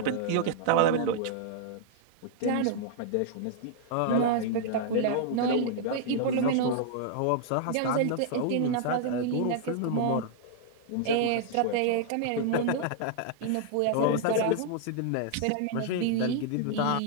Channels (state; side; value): different; both; correlation -0.01